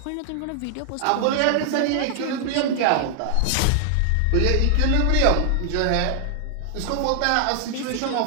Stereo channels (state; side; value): different; both; correlation 0.00